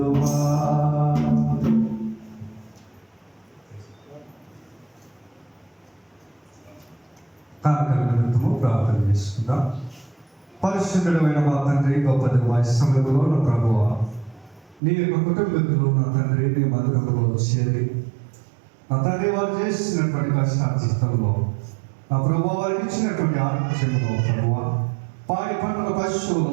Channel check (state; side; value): drops out; left; at 14.8 s